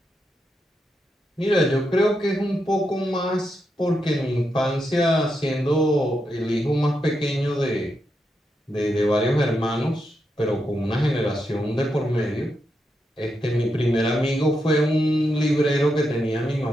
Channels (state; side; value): normal; both; correlation 0.84